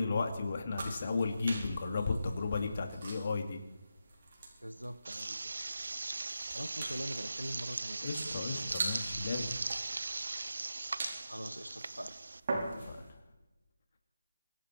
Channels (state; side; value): inverted; both; correlation -0.88